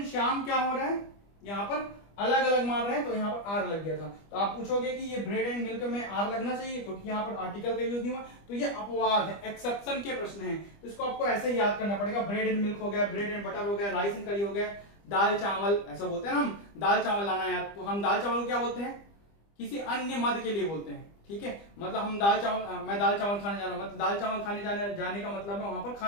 श्याम क्या हो रहा है, यहां पर अलग अलग मार रहे हैं तो यहाँ पर आर लग गया था। तो आप पूछोगे कि ये ब्रेड एंड मिल्क में आर लगना चाहिए क्योंकि यहाँ पर आर्टिकल का यूज नहीं हुआ, तो ये अपवाद है, एक्सेप्शन के प्रश्न है। तो इसको आपको ऐसे ही याद करना पड़ेगा। ब्रेड एंड मिल्क हो गया, ब्रेड एंड बटर हो गया, राइस एंड करी हो गया, दाल चावल, ऐसा बोलते हैं ना हम, दाल चावल लाना यार, तो हम दाल चावल को क्या बोलते हैं, किसी अन्य मद के लिए बोलते हैं, ठीक है। मतलब हम दाल चावल, मैं दाल चावल खाने जा रहा हूं, मतलब दाल चावल खाने जाने का मतलब है वहां पर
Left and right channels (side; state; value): right; late; 25 ms